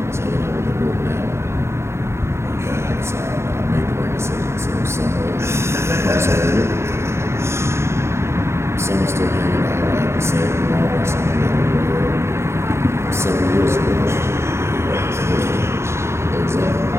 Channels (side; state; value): left; late; 0.13 ms